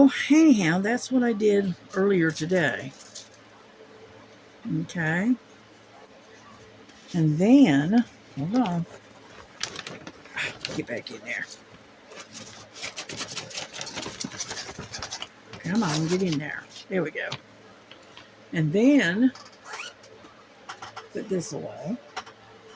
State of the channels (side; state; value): both; identical; correlation 1.00